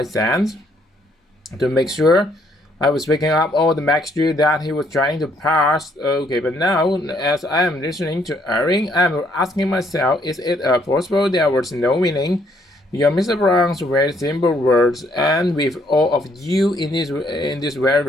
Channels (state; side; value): normal; both; correlation 0.68